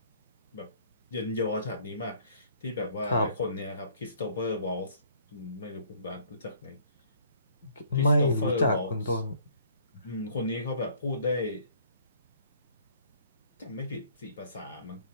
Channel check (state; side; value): inverted; both; correlation -0.57